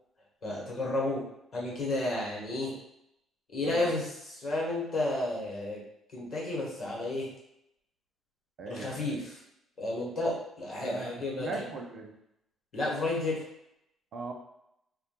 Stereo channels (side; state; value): both; normal; correlation 0.66